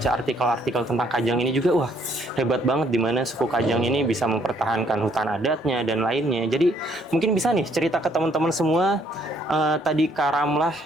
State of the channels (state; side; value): normal; both; correlation 0.66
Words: artikel-artikel tentang Kajang ini juga, wah hebat banget di mana suku Kajang ini bisa mempertahankan hutan adatnya dan lainnya. Jadi mungkin bisa nih cerita ke teman-teman semua, tadi Kak Ramlah